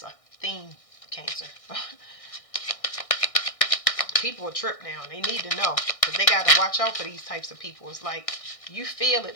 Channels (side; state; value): right; late; 1.6 ms